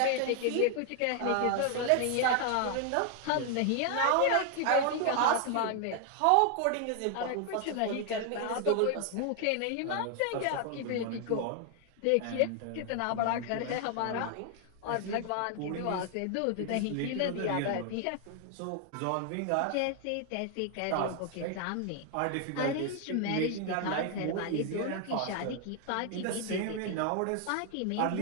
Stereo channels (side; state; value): both; different; correlation 0.00